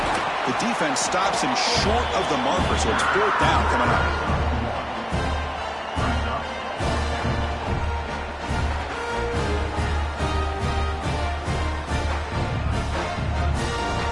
The defense stops him short of the marker, so it's 4th down coming up.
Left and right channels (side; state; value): both; identical; correlation 1.00